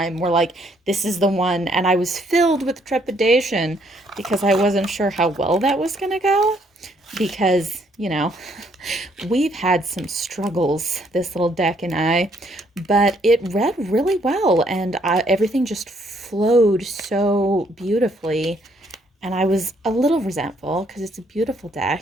were like, this is the one. And I was filled with trepidation because I wasn't sure how well that was going to go, because, we've had some struggles, this little deck and I, but it read really well, and everything just flowed so beautifully. And I was a little resentful because it's a beautiful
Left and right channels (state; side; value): normal; both; correlation 0.68